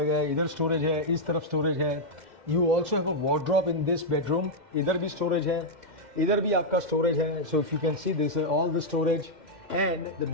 गया है. इधर स्टोरेज है, इस तरफ स्टोरेज है. You also have a wardrobe in this bedroom. इधर भी स्टोरेज है, इधर भी आपका स्टोरेज है. So if you can see this all the storage and the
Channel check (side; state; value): left; late; 2.1 ms